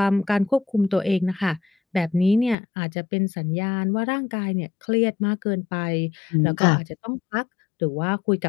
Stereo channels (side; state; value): right; drops out; at 2.6 s